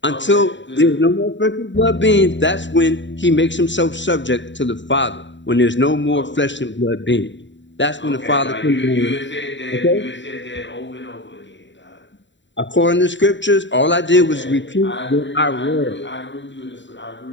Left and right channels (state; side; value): late; right; 0.54 ms